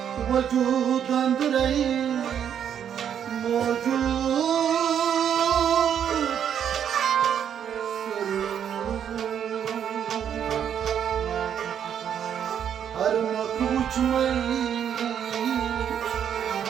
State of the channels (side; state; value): left; quieter; 8.8 dB